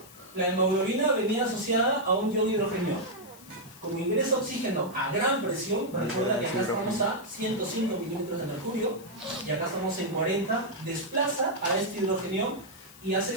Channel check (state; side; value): noise; left; hiss, 21 dB below the sound